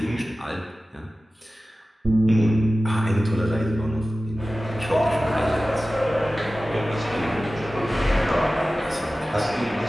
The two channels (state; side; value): normal; both; correlation 0.96